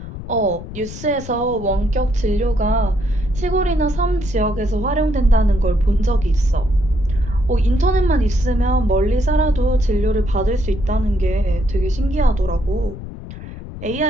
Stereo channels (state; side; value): noise; left; rumble, 12 dB below the sound